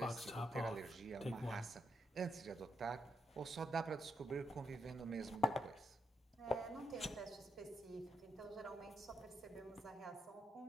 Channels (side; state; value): both; normal; correlation 0.80